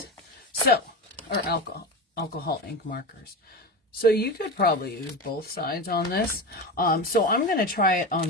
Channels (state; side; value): normal; both; correlation 0.23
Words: So, or alcohol ink markers. So you could probably use both sides on this. So I'm going to try it on